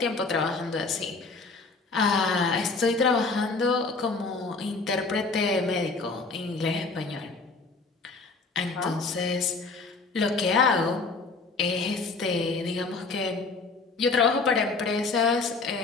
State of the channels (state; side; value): quieter; right; 4.0 dB